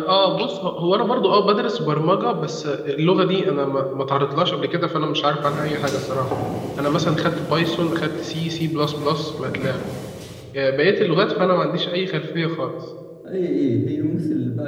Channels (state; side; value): identical; both; correlation 1.00